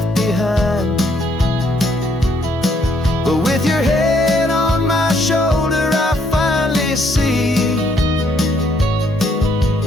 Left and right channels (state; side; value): normal; both; correlation 0.69